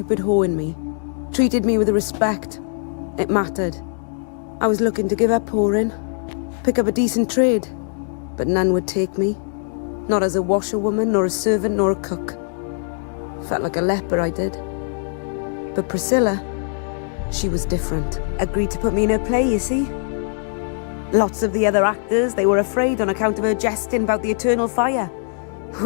whore in me. Treated me with respect. It mattered. I was looking to give up whoring. Pick up a decent trade. But none would take me. Not as a washerwoman, nor a servant, nor a cook. Felt like a leper, I did. But Priscilla, she was different. Agreed to put me in her play, you see. Lots of the other actors, they were afraid on account of her jesting about the eternal fire.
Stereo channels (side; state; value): right; silent; digital silence